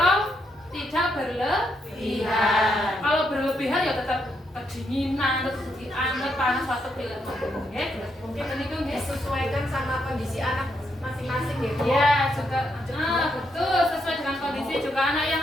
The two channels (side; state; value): both; normal; correlation 0.79